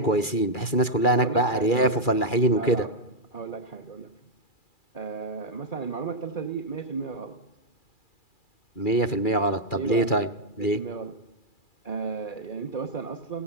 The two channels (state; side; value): late; right; 2.4 ms